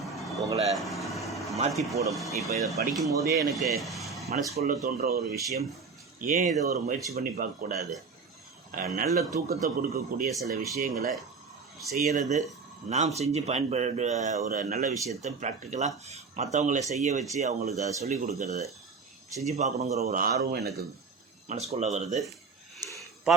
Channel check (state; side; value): quieter; left; 4.8 dB